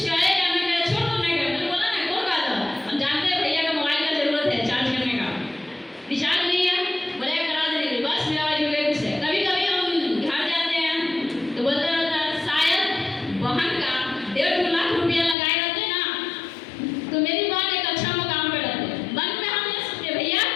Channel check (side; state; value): right; drops out; at 15.4 s